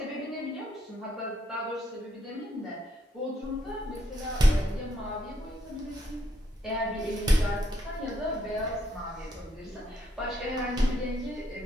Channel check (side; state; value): both; normal; correlation 0.74